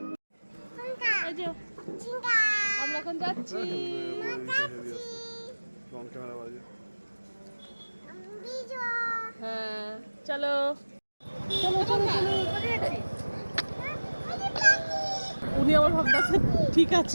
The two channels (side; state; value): both; inverted; correlation -1.00